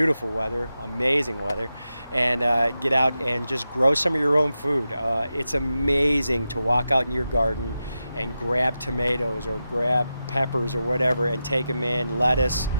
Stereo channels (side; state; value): both; inverted; correlation -0.91